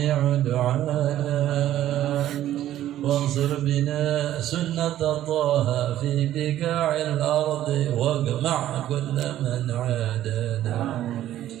دعانا، وانصر بنا سنة طه في بقاع الأرض، واجمع كل من عادانا،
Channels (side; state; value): left; quieter; 12.7 dB